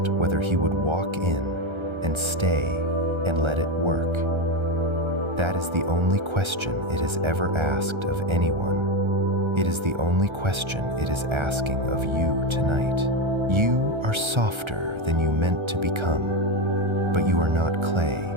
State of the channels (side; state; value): left; late; 1.3 ms